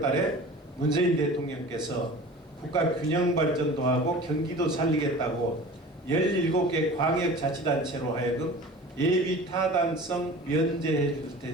달에 문재인 대통령께서 국가 균형 발전도 하고 경기도 살리겠다고 17개 광역자치단체로 하여금 예비 타당성 면제해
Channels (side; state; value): both; normal; correlation 0.39